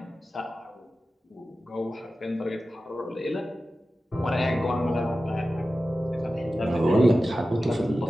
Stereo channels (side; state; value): both; normal; correlation 0.94